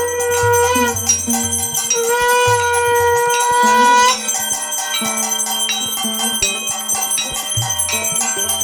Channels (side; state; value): both; identical; correlation 1.00